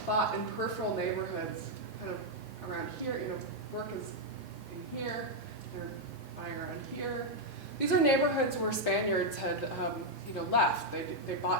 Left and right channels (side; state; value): both; normal; correlation -0.01